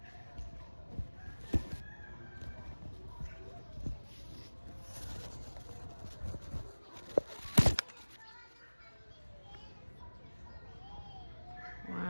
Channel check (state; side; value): inverted; both; correlation -1.00